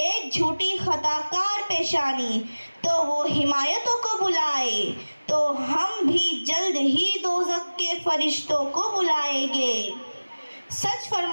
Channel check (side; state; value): both; inverted; correlation -1.00